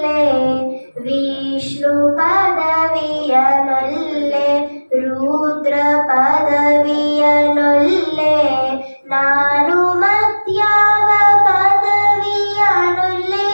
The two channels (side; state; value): both; inverted; correlation -1.00